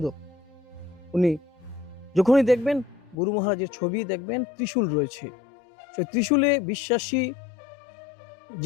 উনি যখনই দেখবেন গুরু মহারাজের ছবি দেখবেন ত্রিশূল রয়েছে। সেই ত্রিশূলে বিশ্বাসী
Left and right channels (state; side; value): drops out; right; at 3.2 s